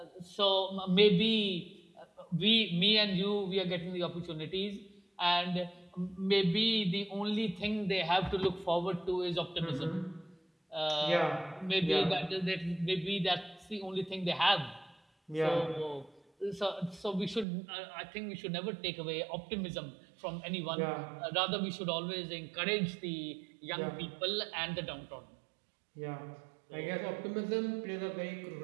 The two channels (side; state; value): left; drops out; at 17.4 s